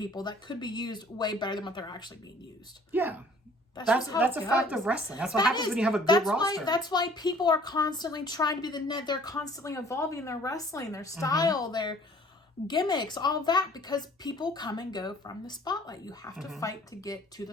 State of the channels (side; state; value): both; normal; correlation 0.54